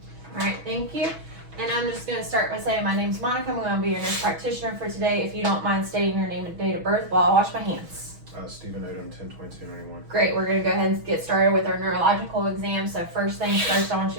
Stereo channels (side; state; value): left; late; 6.2 ms